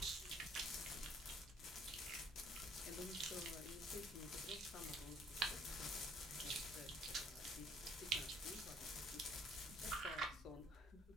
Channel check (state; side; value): normal; both; correlation 0.59